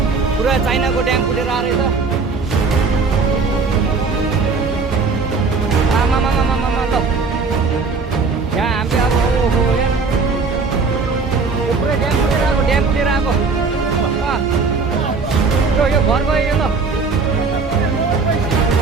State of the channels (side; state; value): left; quieter; 4.5 dB